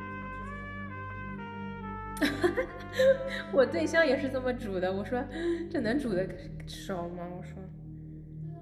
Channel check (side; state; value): both; identical; correlation 1.00